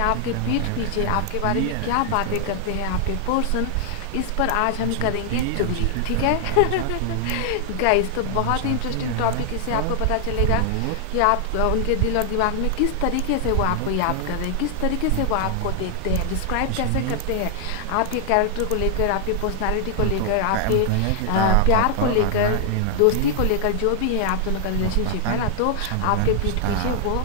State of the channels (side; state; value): both; different; correlation 0.00